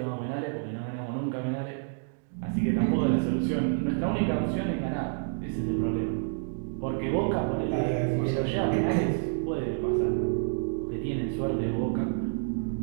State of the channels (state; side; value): silent; left; digital silence